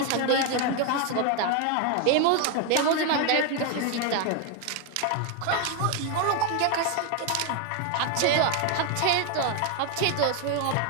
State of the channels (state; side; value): different; both; correlation 0.01